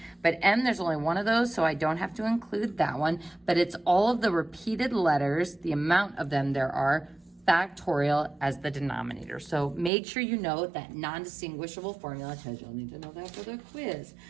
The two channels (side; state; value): left; drops out; at 9.9 s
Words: but M, there's only one of those, so I don't have to include that one, but it's all of the repeated letters, the amount of them there are, factorial as the denominator. So make sure you know that non-distinguishable formula because you'll need to know that for the quiz.